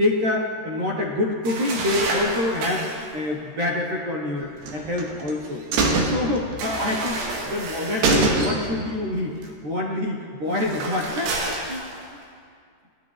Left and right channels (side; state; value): left; late; 13 ms